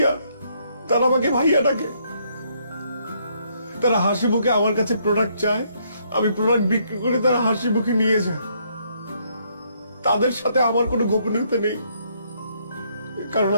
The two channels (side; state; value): both; inverted; correlation -0.71